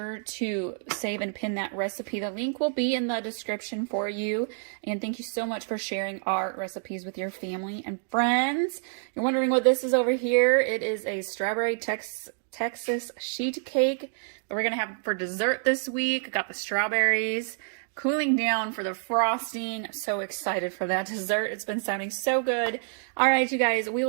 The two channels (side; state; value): left; silent; digital silence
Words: to save and pin that recipe. The link will be in the description for you. And thank you so much for sharing our recipes with your family and friends. You're wondering what this is over here? It is a strawberry Texas sheet cake that we're going to have for dessert this week. Got the strawberries cooling down for the frosting. I'm so excited for that dessert. It's been sounding so good. All right, you guys, we